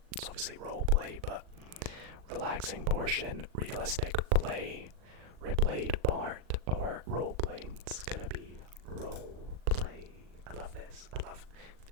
it's obviously roleplay, but relaxing portion, realistic play, replayed part, or roleplay. It's gonna be roleplay. I love this.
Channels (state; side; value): late; left; 39 ms